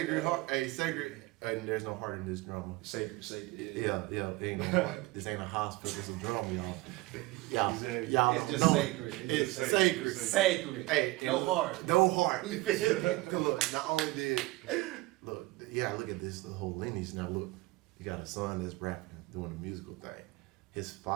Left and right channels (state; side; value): quieter; left; 20.4 dB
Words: heart. Hey, sacred. And there's no heart in this drama. Sacred. Yeah, ain't no heart. This ain't a hospital. It's a drama, y'all. Exactly. Y'all It's don't just know. sacred. It's just sacred. Sacred. Hey, No and heart. No heart. Look, not only did look at this the whole lineage. Now look, you got a son that's rapping, doing a musical thing. His